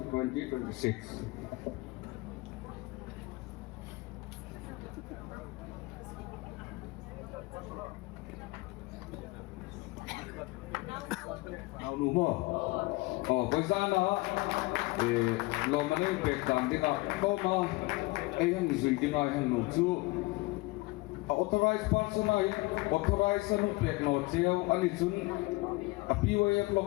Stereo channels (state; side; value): quieter; right; 23.0 dB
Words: 2026. Nào nụ mò, với sao đó, lo mà nên việc làm thế nào, có mà ai hàng duy thế này hàng nụ chú, authorized person ay authorized ano pêkna treo ani chun a PYF